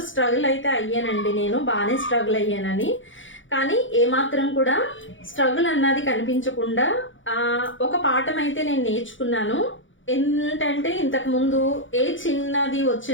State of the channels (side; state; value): right; late; 0.56 ms